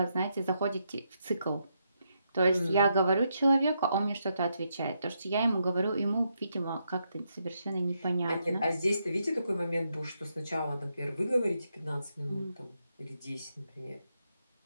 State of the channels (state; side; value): inverted; both; correlation -0.80